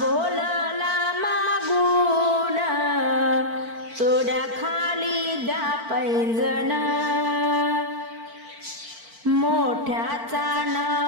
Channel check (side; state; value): left; late; 4.4 ms